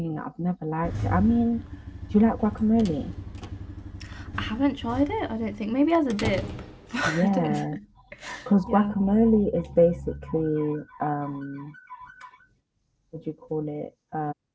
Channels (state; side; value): identical; both; correlation 1.00